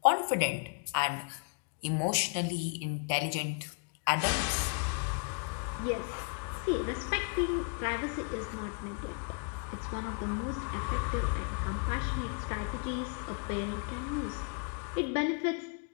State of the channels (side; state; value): right; quieter; 39.2 dB